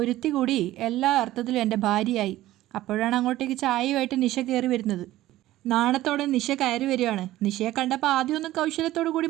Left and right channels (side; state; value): left; quieter; 15.4 dB